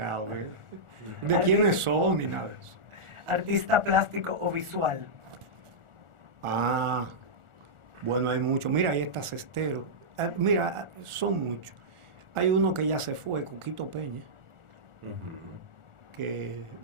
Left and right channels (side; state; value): left; late; 1.4 ms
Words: de quiénes son ni nada de eso. Artista plástico o visual. Ah, bueno, hay muchos. Mira, ahí está Cestero. Mira, son muchos. Hay uno que ya se fue, Coquito Peña, que